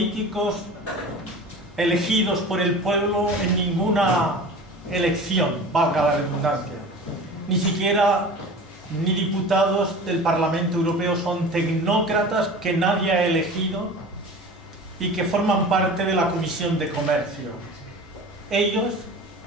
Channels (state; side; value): normal; both; correlation 0.37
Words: elegidos por el pueblo en ninguna elección, valga la redundancia. Ni siquiera ni diputados del Parlamento Europeo, son tecnócratas que nadie ha elegido y que forman parte de la Comisión de Comercio. Ellos